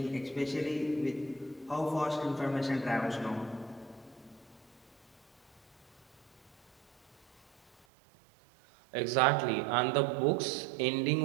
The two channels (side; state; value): left; drops out; at 7.9 s